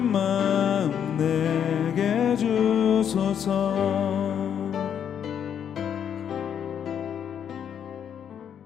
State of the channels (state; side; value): quieter; right; 8.6 dB